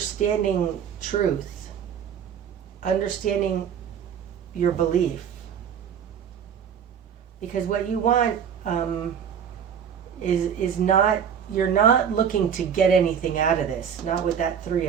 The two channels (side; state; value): left; quieter; 8.0 dB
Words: truth, understanding your belief. Because what you want is not, you're not looking to get anything out of this, not with that Three